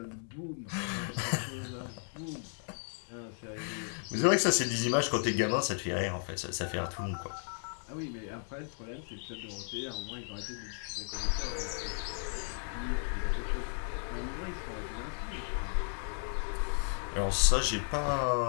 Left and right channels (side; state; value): right; silent; 55 dB below the other